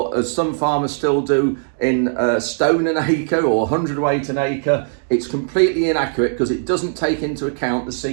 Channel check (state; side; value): silent; left; digital silence